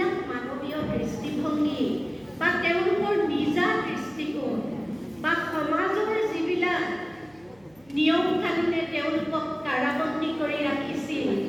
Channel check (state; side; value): noise; right; hum, 29 dB below the sound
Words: মানৱীয় দৃষ্টিভংগী বা তেওঁলোকৰ নিজা দৃষ্টিকোণ বা সমাজৰ যিবিলাক নিয়ম কানুনে তেওঁলোকক কাৰাবন্দী কৰি ৰাখিছিল,